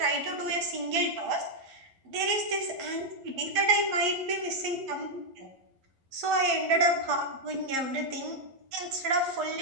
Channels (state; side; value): late; left; 11 ms